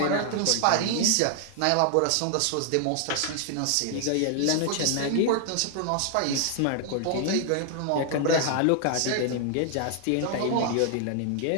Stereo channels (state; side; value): different; both; correlation 0.00